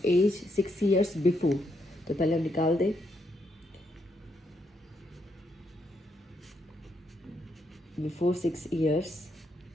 एज 6 years बिफोर। तो पहले हम निकाल दें, before 6 years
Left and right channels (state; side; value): normal; both; correlation 0.78